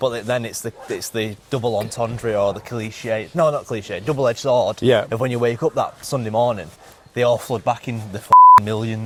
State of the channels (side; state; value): both; identical; correlation 1.00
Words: then it's the double entendre or the cliche. No, not cliche. Double-edged sword. Yeah. Of when you wake up that Sunday morning, they all flood back in the